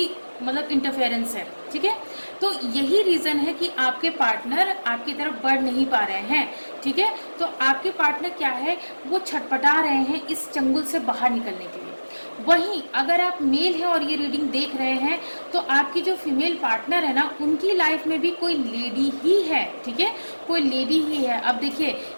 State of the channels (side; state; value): both; inverted; correlation -1.00